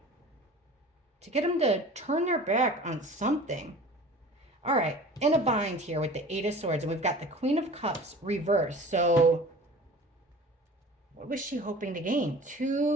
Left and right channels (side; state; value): both; normal; correlation 0.41